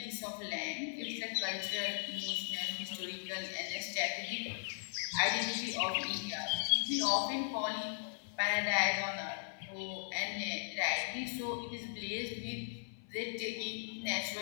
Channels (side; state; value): right; silent; 52 dB below the other